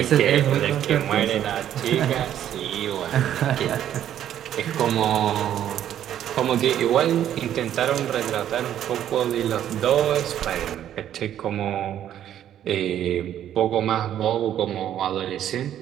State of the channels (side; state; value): left; quieter; 10.9 dB